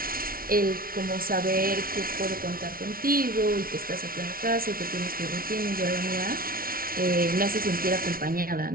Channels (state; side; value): late; left; 0.43 ms